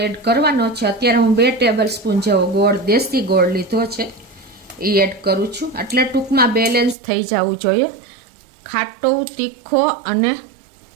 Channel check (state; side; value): drops out; left; at 7.0 s